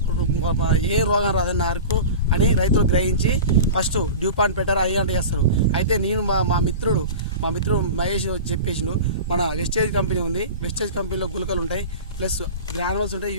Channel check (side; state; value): both; inverted; correlation -0.33